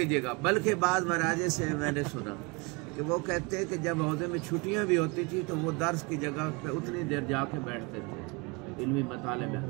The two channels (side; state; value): left; quieter; 28.3 dB